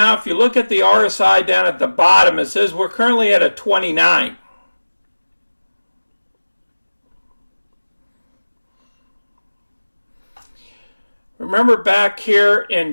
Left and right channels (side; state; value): both; inverted; correlation -1.00